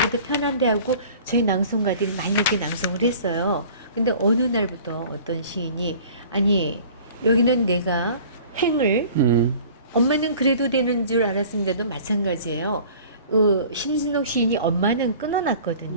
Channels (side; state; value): both; inverted; correlation -0.47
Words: 더 편한데 하고 저희 낭송가들이 많이 이렇게 낭송을 했어요. 근데 어느 날부터 어떤 시인이 아니 여기는 내가 행을 엄마는 그래도 되는 줄 알았습니다도 마찬가지예요. 심순옥 시인이 엄마는